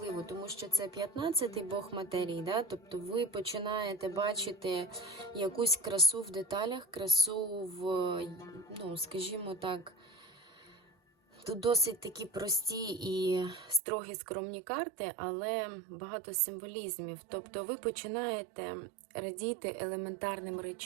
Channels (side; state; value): left; drops out; at 13.8 s